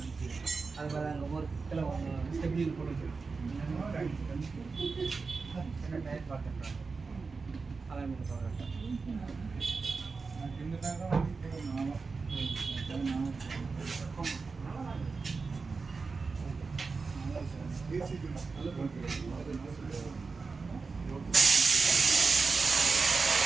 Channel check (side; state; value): left; quieter; 4.5 dB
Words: அது பாரு அங்கே ஒரு கிலோ ஸ்டெப்லி போட்டு என்ன டயர் பார்த்துட்டேன். அதான் சொல்கிறேன்.